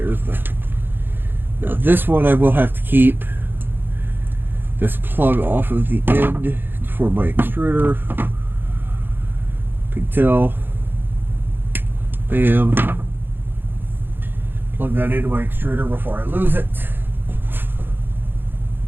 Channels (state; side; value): late; left; 0.098 ms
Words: the. Now this one I will have to keep this plug off of the end for my extruder. Pigtail. Bam. Plug that into my extruder before I lose it.